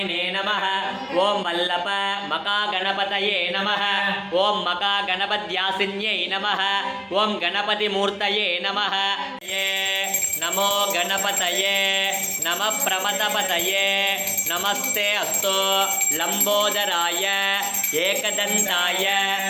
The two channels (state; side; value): identical; both; correlation 1.00